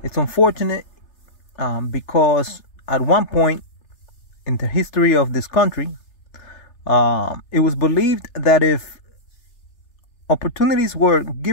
It's unfortunate because at one point in the history of this country, it was believed that if opportunities were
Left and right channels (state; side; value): late; right; 3.3 ms